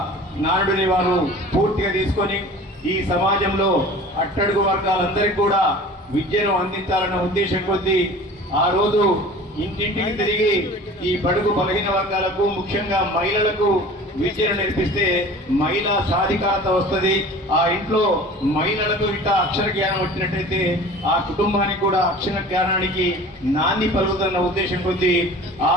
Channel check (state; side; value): normal; both; correlation 0.42